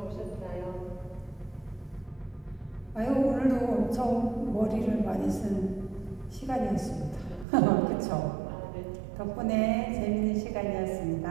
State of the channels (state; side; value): drops out; left; at 7.5 s